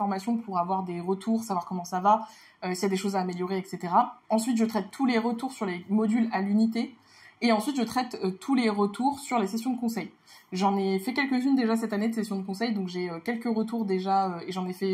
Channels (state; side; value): identical; both; correlation 1.00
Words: pour avoir des retours, savoir comment ça va, s'il y a des choses à améliorer, etc. Ensuite, je traite tous les retours sur les modules à l'unité. Et ensuite, je traite tous les retours sur les sessions de conseil. J'en ai fait quelques-unes déjà cette année de sessions de conseil, donc j'ai quelques retours déjà, et j'en ai